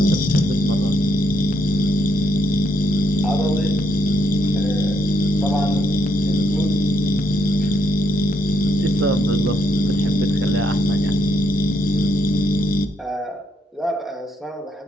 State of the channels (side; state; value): both; normal; correlation 0.75